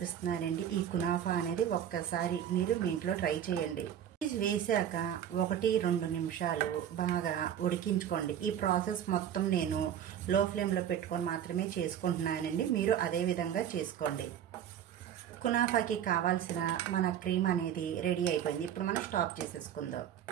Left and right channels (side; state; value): left; quieter; 9.8 dB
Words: ఈ కునాఫా అనేది ఒక్కసారి మీరు మీ ఇంట్లో ట్రై చేయండి. చీజ్ వేసాక 1-2 నిమిషాలు బాగా ఉడికించుకోండి. ఈ ప్రాసెస్ మొత్తం నేను లో ఫ్లేమ్లో పెట్టుకొని మాత్రమే చేసుకుంటున్నానండి. మీరు అదే విధంగా చేసుకోండి. కునాఫాకి కావాల్సిన మన క్రీమ్ అనేది రెడీ అయిపోయింది. ఇప్పుడు మనం స్టాప్ చేసేసుకుందాం.